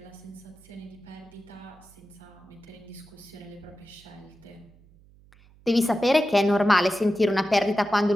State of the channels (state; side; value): noise; right; hum, 26 dB below the sound